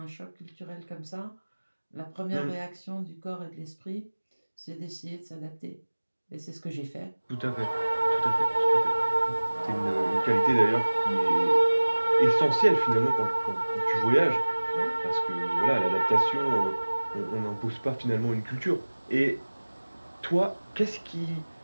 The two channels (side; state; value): both; inverted; correlation -1.00